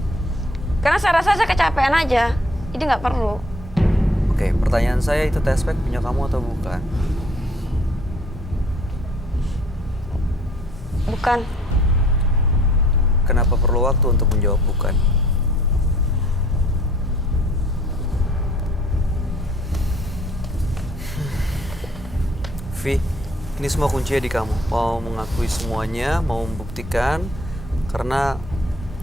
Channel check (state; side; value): normal; both; correlation 0.58